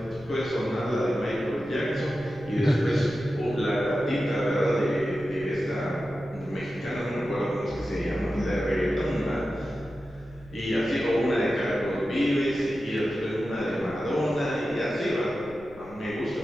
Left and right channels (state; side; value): noise; left; rumble, 22 dB below the sound